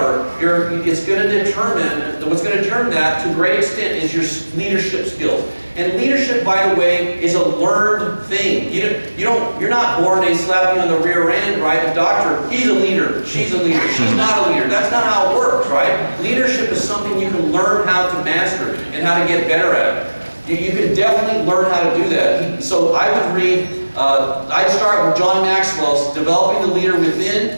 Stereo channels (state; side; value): inverted; both; correlation -1.00